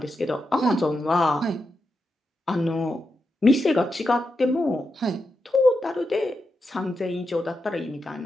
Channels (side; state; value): both; normal; correlation 0.87